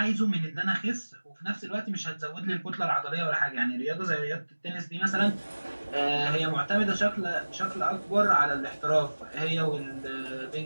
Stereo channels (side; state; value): both; inverted; correlation -1.00